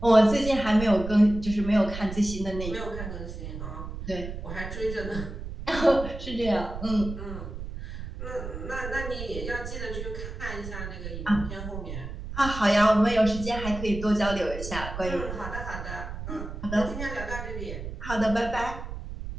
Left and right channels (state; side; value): noise; right; rumble, 8 dB below the sound